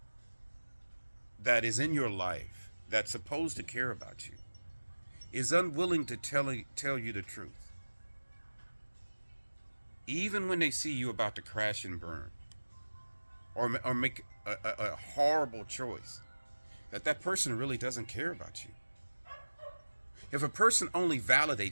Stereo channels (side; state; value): both; inverted; correlation -1.00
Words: that is in your life that's supposed to care about you is unwilling to tell you the truth, even when they see you about to crash and burn, or make a horrible choice, that person really doesn't care about you. If a person only